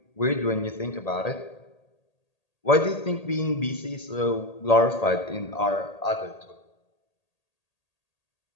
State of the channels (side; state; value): right; late; 1.8 ms